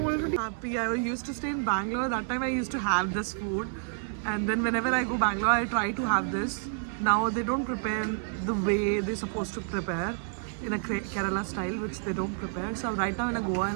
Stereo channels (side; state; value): left; silent; 58 dB below the other